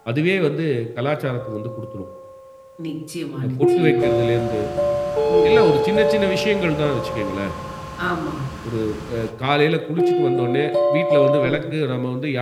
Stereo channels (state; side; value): identical; both; correlation 1.00